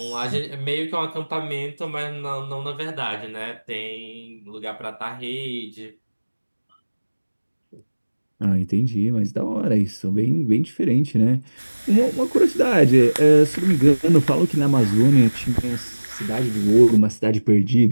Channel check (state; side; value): inverted; both; correlation -1.00